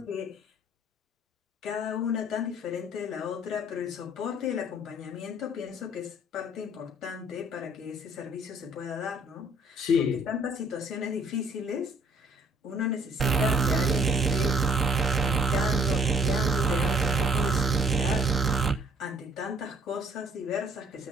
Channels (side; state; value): both; normal; correlation 0.60